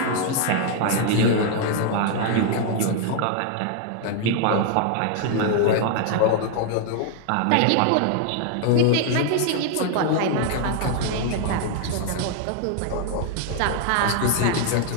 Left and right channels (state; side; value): different; both; correlation 0.00